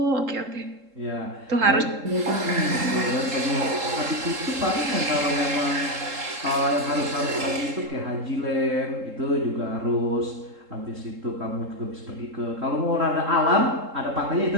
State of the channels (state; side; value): late; left; 3.7 ms